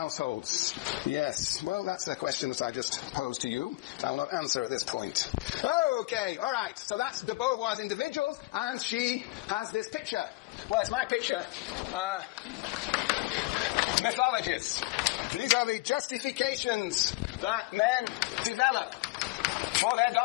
Yes, well, that's a question that I just posed to you. I will not answer at this point. Okay, all right. So that's de Beauvoir's individuals, and she has this picture. Well, it's my picture. Mythologies. These are the justifications that men develop for their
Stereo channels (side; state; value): right; quieter; 21.9 dB